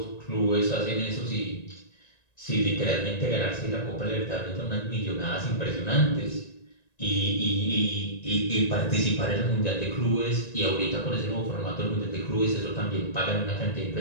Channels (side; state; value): right; late; 1.9 ms